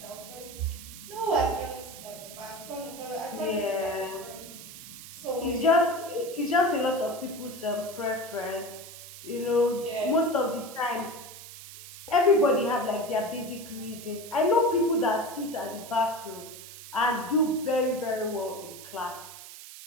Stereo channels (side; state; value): right; noise; hiss, 14 dB below the sound